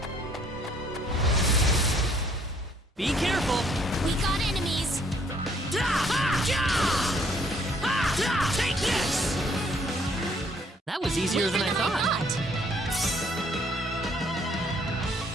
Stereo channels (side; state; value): both; normal; correlation 0.64